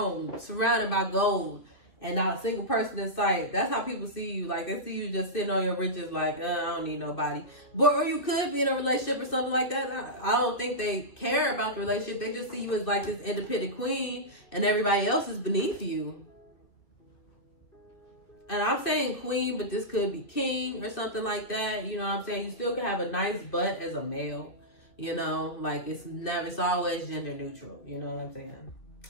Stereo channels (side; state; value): right; late; 2.5 ms